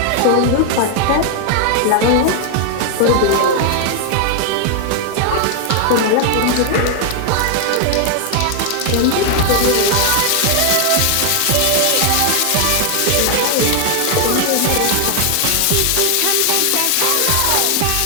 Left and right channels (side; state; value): both; different; correlation 0.00